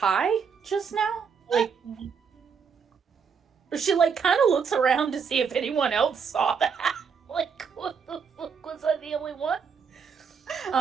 just now? Like, she, like, kind of looks around to see if anyone else saw that. Like, what the fuck, was I the only one?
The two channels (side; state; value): left; quieter; 6.2 dB